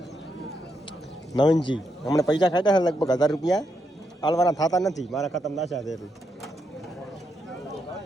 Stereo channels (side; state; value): both; normal; correlation 0.81